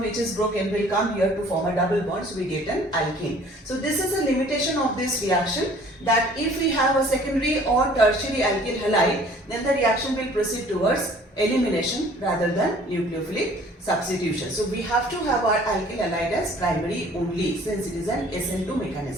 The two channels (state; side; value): normal; both; correlation 0.53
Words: which is broken will come here to form a double bond, so we get an alkene. So this is a limitation of this reaction, that if we have a secondary or tertiary alkyl halide, then the reaction will proceed towards elimination rather than nucleophilic substitution. So we have to have our alkyl halide as primary only, since it is an SN2